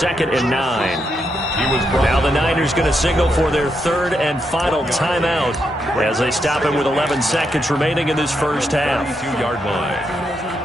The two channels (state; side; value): normal; both; correlation 0.81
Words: and 9. Now the Niners going to signal for their 3rd and final timeout as they stop him with 11 seconds remaining in this first half. 22-yard line.